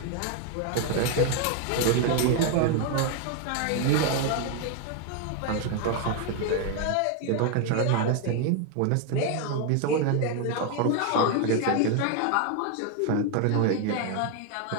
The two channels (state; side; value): different; both; correlation 0.01